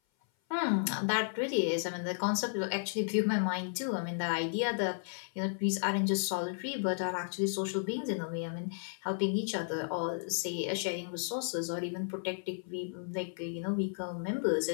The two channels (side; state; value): right; silent; 55 dB below the other